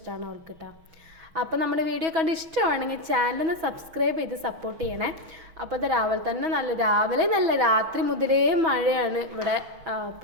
അവൾക്ക് കേട്ടോ. അപ്പോൾ നമ്മുടെ വീഡിയോ കണ്ട് ഇഷ്ടമാണെങ്കിൽ ചാനലൊന്ന് സബ്സ്ക്രൈബ് ചെയ്ത് സപ്പോർട്ട് ചെയ്യണേ. അപ്പോൾ അത് രാവിലെ നല്ല രാത്രി മുതലേ മഴയാണ് ഇവിടെ.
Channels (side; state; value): left; late; 6.2 ms